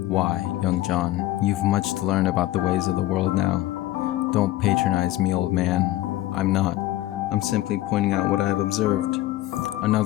Why, young John, you've much to learn about the ways of the world now. Don't patronize me, old man. I'm not. I'm simply pointing out what I have observed.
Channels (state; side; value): quieter; right; 15.8 dB